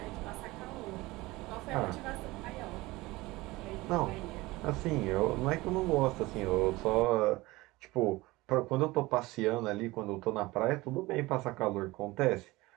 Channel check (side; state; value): left; quieter; 20.6 dB